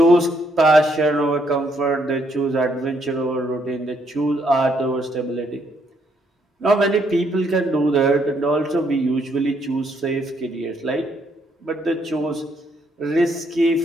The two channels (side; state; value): both; normal; correlation 0.72